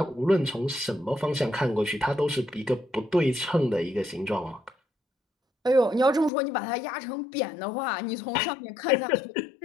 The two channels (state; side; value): drops out; right; at 6.3 s